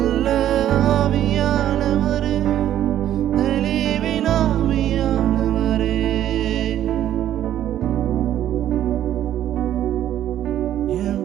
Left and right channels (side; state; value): left; quieter; 11.6 dB